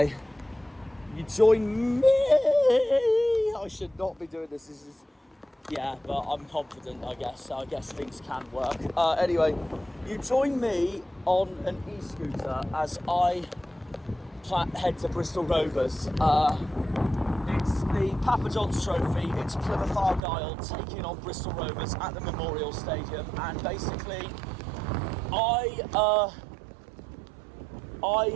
you join me. I should not be doing this. This is, yeah, but I'm confident, I guess. So I guess things can work. Anyway, you join me on an e-scooter as I head to Bristol Rovers. It's the Papa Johns Trophy. It's Plymouth Argyle taking on Bristol Rovers at the Memorial Stadium, and basically,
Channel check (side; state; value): left; drops out; at 20.2 s